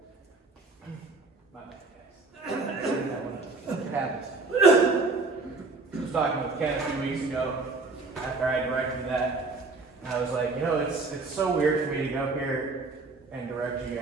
I was talking with Ken a few weeks ago after I directed that, and I was like, you know, it's so weird for me to go here and direct you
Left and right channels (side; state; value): left; quieter; 3.7 dB